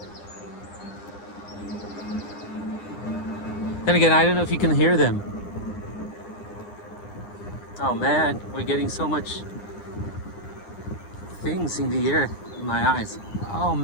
Then again, I don't know if you can hear them. Oh man, we're getting so much things in the air in my eyes. Oh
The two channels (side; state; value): right; late; 9.9 ms